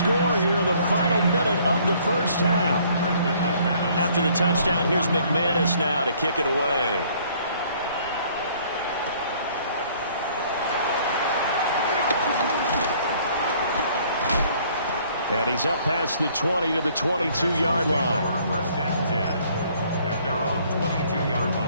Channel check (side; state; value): both; inverted; correlation -0.60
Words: here in the final minute of the 1st half. After the touchdown, here's McManus now to kick it away. And he's up past the 20 to the 22-yard line. 1st and 10 at their own 22-yard